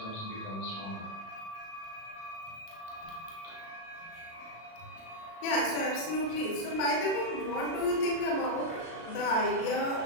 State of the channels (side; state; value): right; late; 36 ms